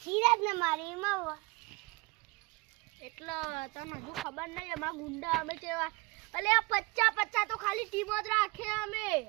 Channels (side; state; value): left; quieter; 25.6 dB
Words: સિરાજ ને મારી માં એટલે તને હજુ ખબર નહીં એમાં ગુંડા અમે કેવા અલે આ 50 તો ખાલી ટીમ જ રાખે